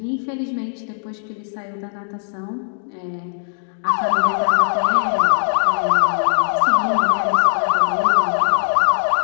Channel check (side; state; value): right; silent; digital silence